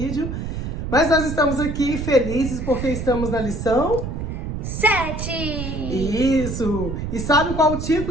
mas nós estamos aqui felizes porque estamos na lição 7! Isso! E sabe qual o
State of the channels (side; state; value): right; noise; rumble, 5 dB below the sound